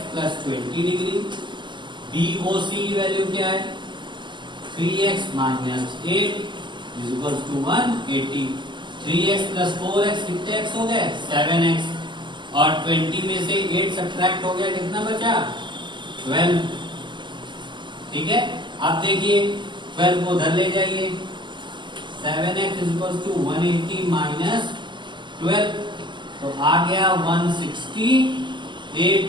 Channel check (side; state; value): left; late; 0.22 ms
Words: plus 20 degree. BOC की वैल्यू क्या है? 3x minus 8 is equal to 180। 3x plus 4x कितने x हो गए? 7x। और 20 में से 8 सब्ट्रैक्ट हो गया, कितना बचा? 12। ठीक है, अब देखिए 12 को उधर ले जाइए, 7x इक्वल टू 180 माइनस 12, तो आ गया 168